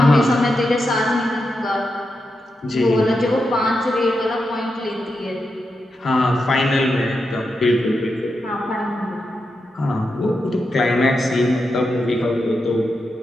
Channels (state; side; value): normal; both; correlation 0.87